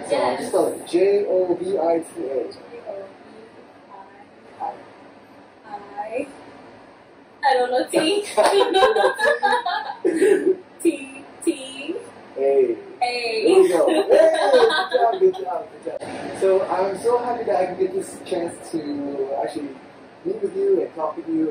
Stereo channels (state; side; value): identical; both; correlation 1.00